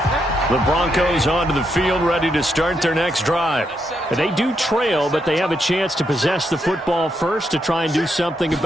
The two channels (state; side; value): normal; both; correlation 0.80